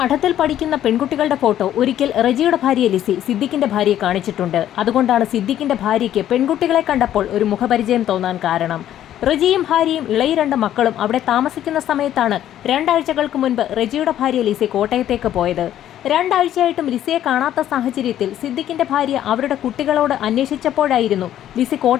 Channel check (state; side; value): quieter; right; 11.6 dB